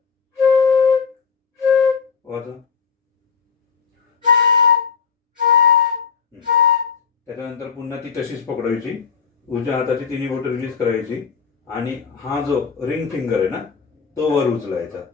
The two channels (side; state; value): right; quieter; 6.1 dB